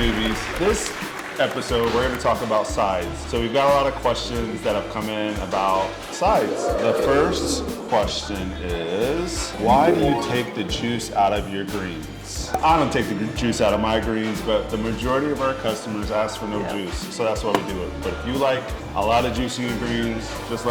This episode, we're going to talk about sides. So we've got a lot of questions that have come in about sides. The first question is, why do you take the juice out of your greens? I don't take the juice out of my greens, but the majority of our customers ask for no juice, so that's why we do it. But if you like a lot of juice in your greens, just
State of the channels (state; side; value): identical; both; correlation 1.00